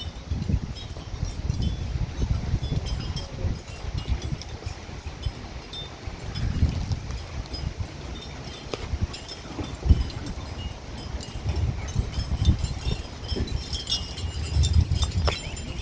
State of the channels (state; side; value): identical; both; correlation 1.00